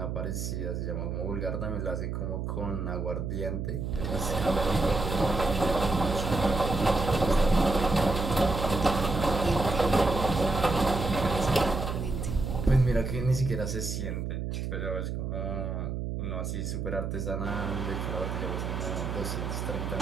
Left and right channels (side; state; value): right; noise; hum, 3 dB below the sound